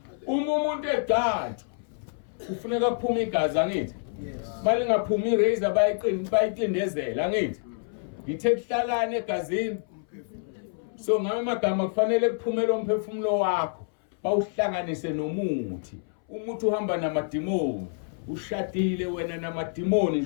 uma umuntu egcatshwa kufuneka kuphume igazi angithi Manje ngaphuma irazor bayiqindezela ngithi. Ngithe kuhlalane egazini. So ngamagama kufanele kuphumele umphefumulo wakho bawuhlanganise nomuthi. Umuthi uhamba namadimoni. Ushadile wena namadimoni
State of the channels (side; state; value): right; silent; 60 dB below the other